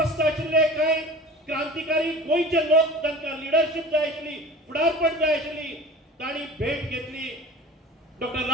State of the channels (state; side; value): normal; both; correlation 0.38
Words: आशिल्ले कांय क्रांतिकारी गोंयचे लोक तांकां लिडरशीप जाय आशिल्ली फुडारपण जाय आशिल्ली तांणी भेट घेतली डॉक्टर